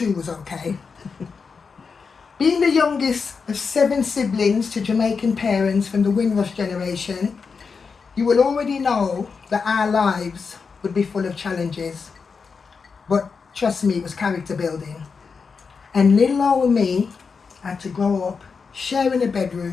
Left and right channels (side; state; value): right; quieter; 5.3 dB